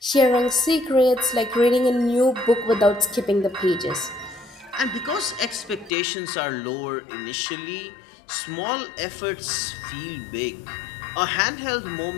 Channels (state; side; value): drops out; right; at 5.9 s